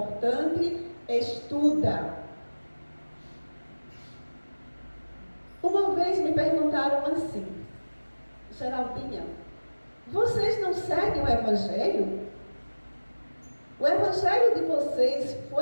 estuda. Uma vez me perguntaram assim: Geraldinha, vocês não seguem o Evangelho? O Evangelho de vocês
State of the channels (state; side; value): inverted; both; correlation -1.00